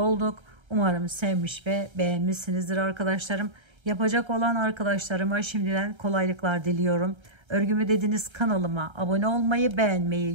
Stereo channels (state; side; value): late; left; 1.3 ms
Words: Umarım sevmiş ve beğenmişsinizdir arkadaşlarım. Yapacak olan arkadaşlarıma şimdiden kolaylıklar diliyorum. Örgümü Dediniz kanalıma abone olmayı,